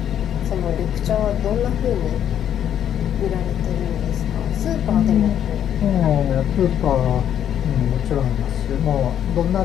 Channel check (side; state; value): right; quieter; 9.8 dB